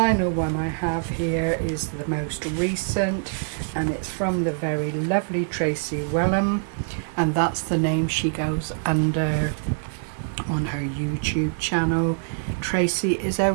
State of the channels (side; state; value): left; silent; digital silence